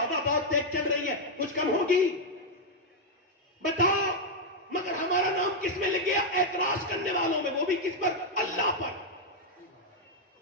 बहुत तेज चल रही है, कुछ कम होगी? बताओ। मगर हमारा नाम किस में लग गया? एतराज करने वालों में, वो भी किस पर? अल्लाह पर।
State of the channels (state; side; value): normal; both; correlation -0.01